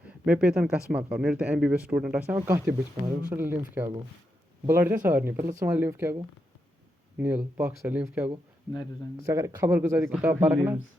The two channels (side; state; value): both; normal; correlation 0.84